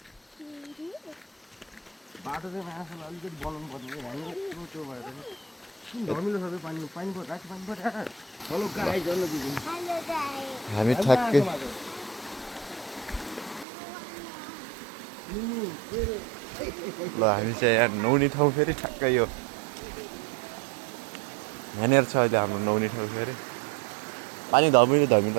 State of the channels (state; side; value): drops out; left; at 13.7 s